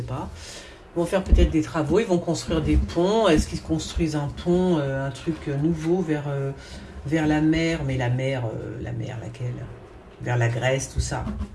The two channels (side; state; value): both; identical; correlation 1.00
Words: pas. Ils vont faire peut-être des travaux, ils vont construire des ponts. Est-ce qu'ils construisent un pont, un truc nouveau vers la mer? Mais la mer laquelle? Vers la Grèce, tout ça.